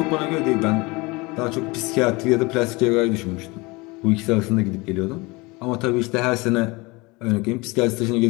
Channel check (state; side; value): quieter; right; 24.7 dB